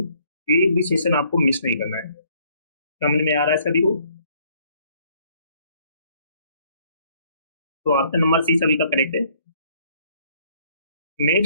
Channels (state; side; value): inverted; both; correlation -0.64